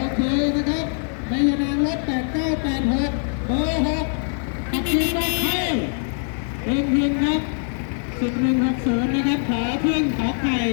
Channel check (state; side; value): silent; right; 57 dB below the other